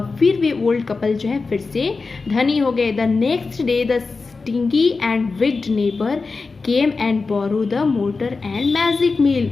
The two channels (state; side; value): quieter; right; 4.2 dB